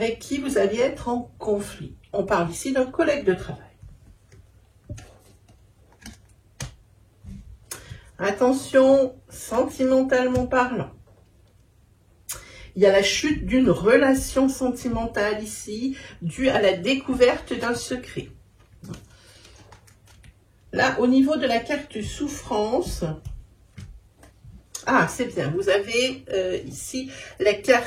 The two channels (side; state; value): both; identical; correlation 1.00